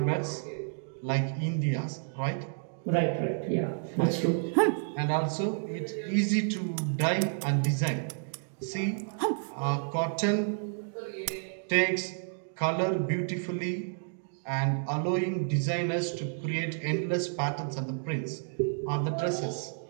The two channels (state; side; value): silent; left; digital silence